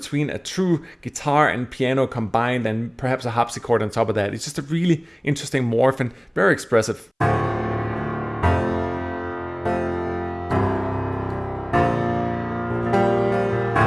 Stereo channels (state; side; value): identical; both; correlation 1.00